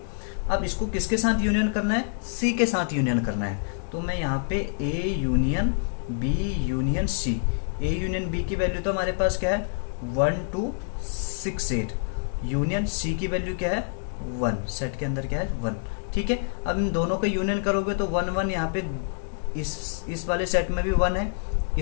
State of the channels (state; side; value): silent; right; digital silence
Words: अब इसको किसके साथ यूनियन करना है, सी के साथ यूनियन करना है। तो मैं यहाँ पे A union B union C, A union B की वैल्यू तो हमारे पास क्या है 1 2 6 8, यूनियन सी की वैल्यू क्या है 1, सेट के अंदर क्या है 1। ठीक है, अब इन दोनों का यूनियन करोगे तो 1 1 यहाँ पे इस वाले सेट में भी 1 है,